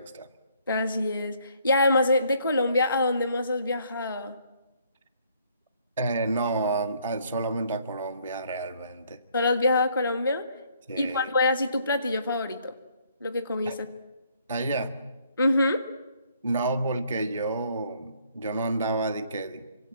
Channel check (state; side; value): inverted; both; correlation -0.65